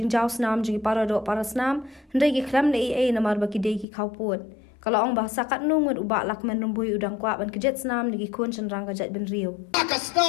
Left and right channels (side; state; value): right; drops out; at 3.9 s